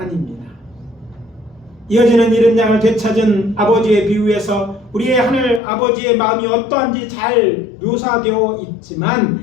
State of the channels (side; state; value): right; drops out; at 5.6 s